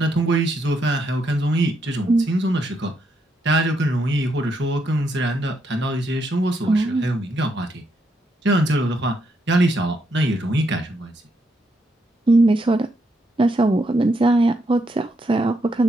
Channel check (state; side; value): normal; both; correlation 0.78